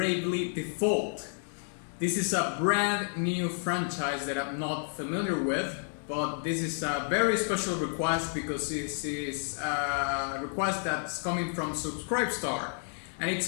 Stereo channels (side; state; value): right; silent; 57 dB below the other